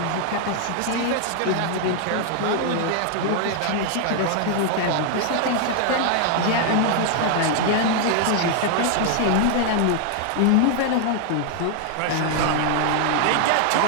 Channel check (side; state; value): both; different; correlation 0.00